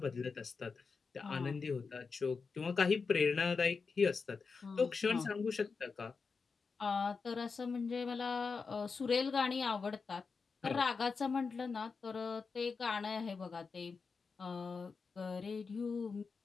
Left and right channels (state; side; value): quieter; right; 4.9 dB